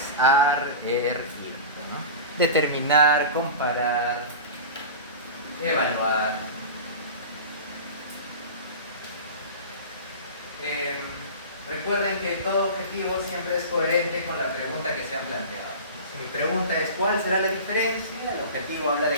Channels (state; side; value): inverted; both; correlation -0.31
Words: ar, ir, ¿no? Determinar, comparar, evaluar. Recuerden que todo objetivo siempre es coherente con la pregunta que se han planteado. Si mi pregunta es ¿cuál será la diferencia? El objetivo habla